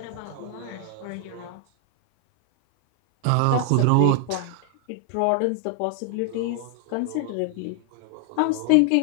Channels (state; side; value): different; both; correlation 0.00